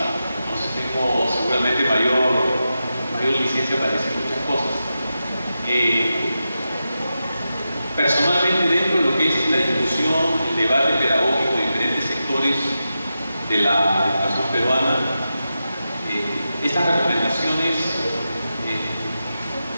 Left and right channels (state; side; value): inverted; both; correlation -0.90